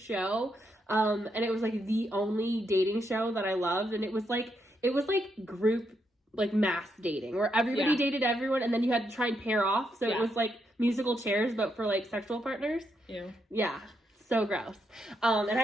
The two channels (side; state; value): both; normal; correlation 0.80